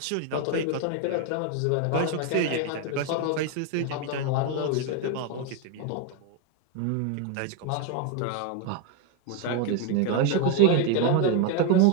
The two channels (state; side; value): different; both; correlation 0.01